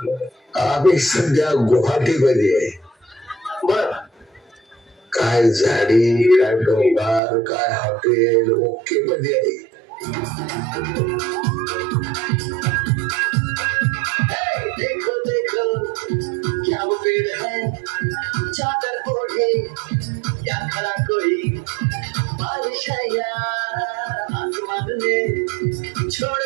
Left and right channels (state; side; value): drops out; left; at 7.2 s